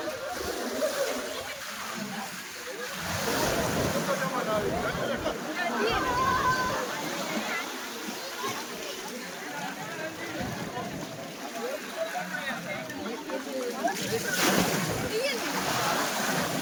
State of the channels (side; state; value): both; identical; correlation 1.00